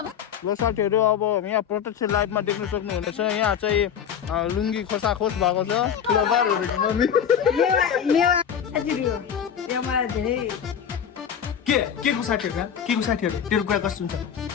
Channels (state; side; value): quieter; right; 8.3 dB